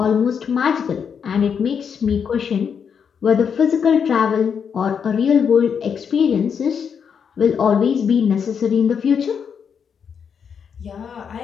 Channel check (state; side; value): quieter; right; 7.0 dB